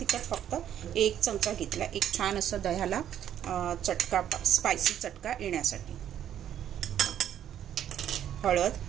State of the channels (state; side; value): quieter; left; 10.4 dB